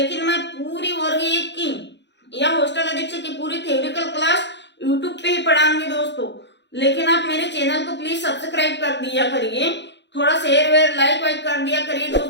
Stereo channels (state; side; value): late; right; 0.51 ms